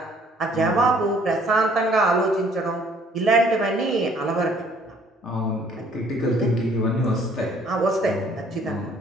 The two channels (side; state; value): both; normal; correlation 0.59